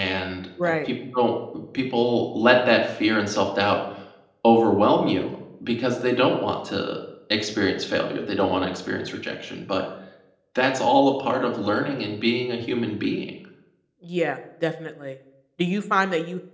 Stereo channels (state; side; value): identical; both; correlation 1.00